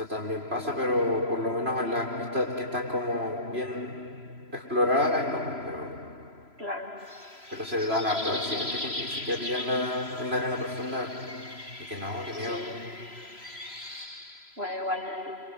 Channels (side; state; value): left; late; 3.0 ms